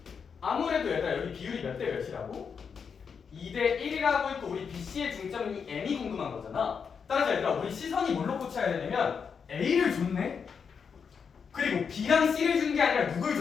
아무래도 얘들아 여기 비율이 몇 대 몇이라고? 2대 1이라고 있고 우리 BC의 중점이 M이 궁금한 거잖아. 따라서 얘들아 우리 시선이 뭘로 꽂혀야 되냐면 A를 줬네? 그리고 B랑 C를 준 게 아니라 누굴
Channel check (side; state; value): right; quieter; 6.3 dB